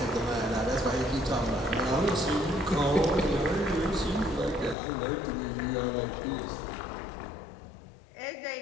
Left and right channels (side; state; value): right; drops out; at 4.8 s